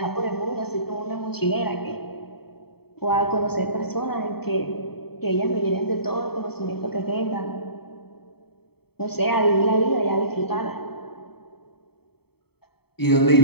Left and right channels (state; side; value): late; right; 0.96 ms